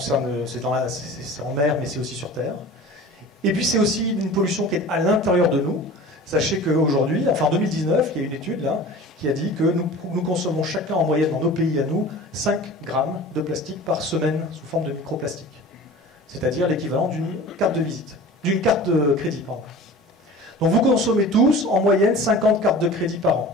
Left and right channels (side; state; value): both; normal; correlation 0.39